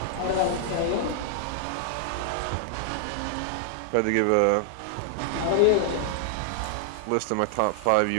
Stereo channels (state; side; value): different; both; correlation -0.01